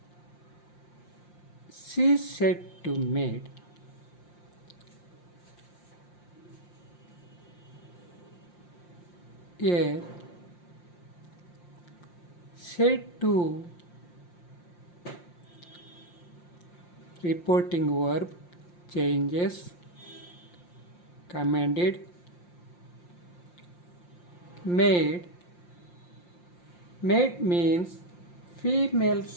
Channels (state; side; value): late; right; 5.7 ms